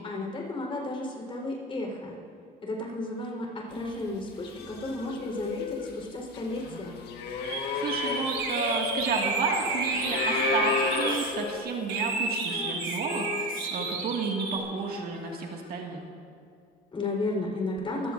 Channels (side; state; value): both; normal; correlation 0.23